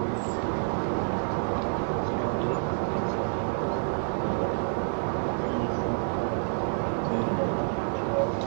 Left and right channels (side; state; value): left; silent; 59 dB below the other